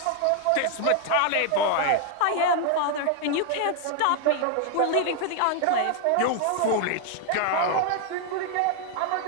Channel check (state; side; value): different; both; correlation 0.00